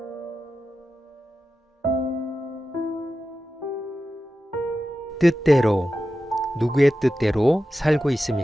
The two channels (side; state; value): both; normal; correlation 0.92